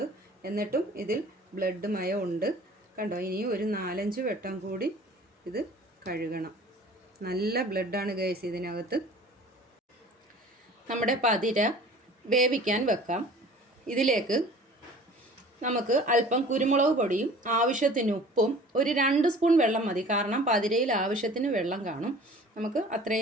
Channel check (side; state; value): both; normal; correlation 0.46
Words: എന്നിട്ടും ഇതിൽ ബ്ലഡ് മയം ഉണ്ട്. കണ്ടോ, ഇനിയും ഒരു 4-5 വട്ടം കൂടി ഇത് കഴുകണം. നല്ല ബ്ലഡാണ് ഗൈസ് ഇതിനകത്ത്. നമ്മുടെ പതിര വേവിക്കാൻ വെക്കാം. ഇതിലേക്ക് നമുക്ക് അല്പം കുരുമുളക് പൊടിയും ആവശ്യത്തിന് ഉപ്പും ഒരു 2 സ്പൂൺ വെള്ളം മതി. കാരണം പതിരയിൽ ആവശ്യത്തിന് വെള്ളം കാണും. നമുക്ക്